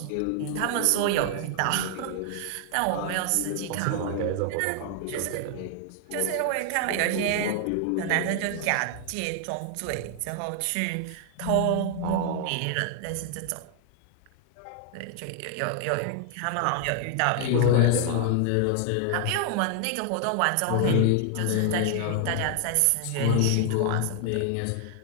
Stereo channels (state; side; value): different; both; correlation 0.00